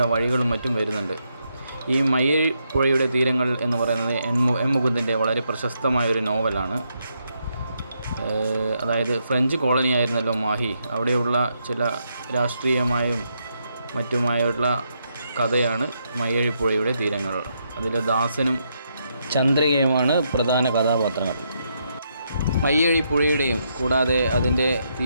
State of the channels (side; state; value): both; inverted; correlation -0.79